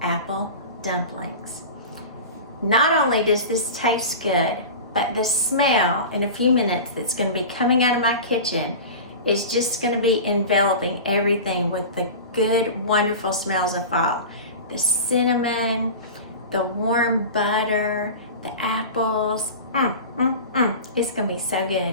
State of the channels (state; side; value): inverted; both; correlation -0.32